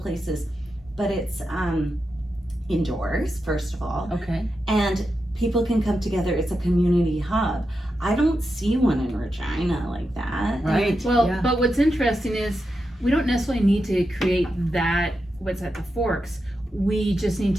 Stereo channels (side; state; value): both; normal; correlation 0.88